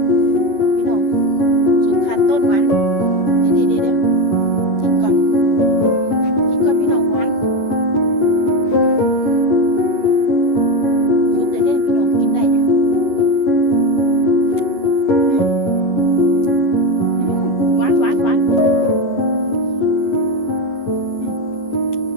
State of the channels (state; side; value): late; right; 11 ms